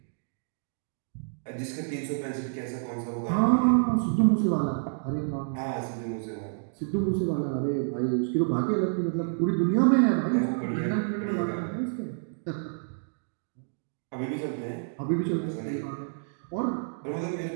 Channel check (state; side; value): silent; left; digital silence